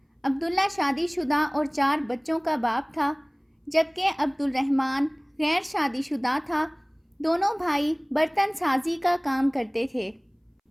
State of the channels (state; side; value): identical; both; correlation 1.00